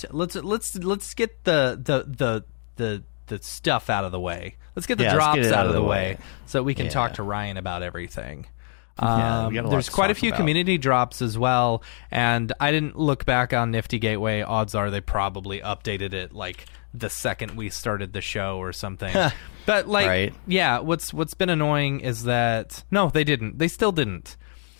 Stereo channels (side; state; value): right; silent; 62 dB below the other